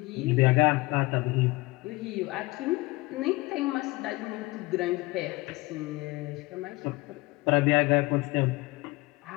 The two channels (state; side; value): quieter; right; 22.3 dB